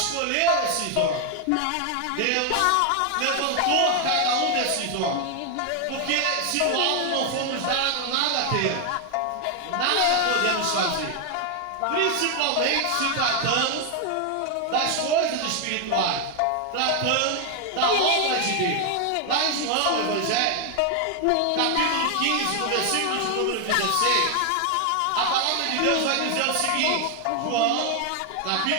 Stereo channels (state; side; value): different; both; correlation 0.00